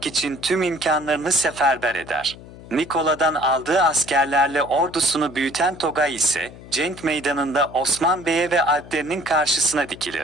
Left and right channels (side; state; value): left; noise; hum, 17 dB below the sound